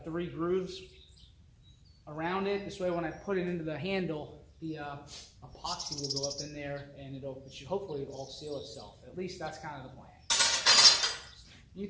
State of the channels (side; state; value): both; identical; correlation 1.00